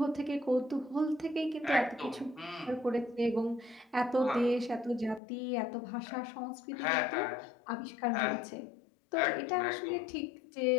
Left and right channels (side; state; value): right; drops out; at 5.2 s